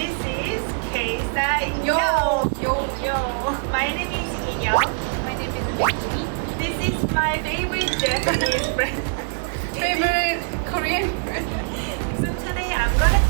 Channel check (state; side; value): silent; left; digital silence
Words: is KSTYLEYO. Yo. My name is Inyoung. My name is Becky. This is my favorite Japanese friend. Favorite Korean friend. So today I'm gonna